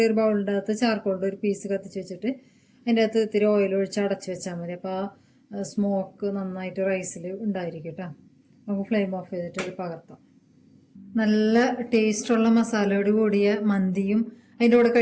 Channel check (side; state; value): both; identical; correlation 1.00